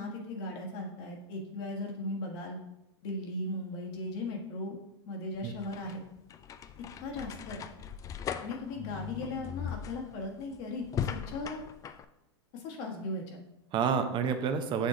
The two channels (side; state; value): both; normal; correlation 0.10